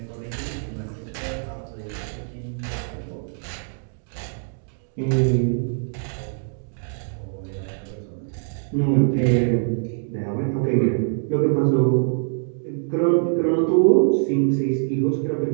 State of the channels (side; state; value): left; silent; 63 dB below the other